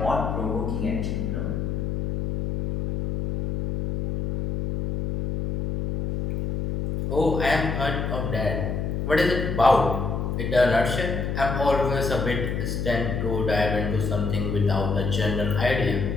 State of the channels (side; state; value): left; noise; hum, 2 dB below the sound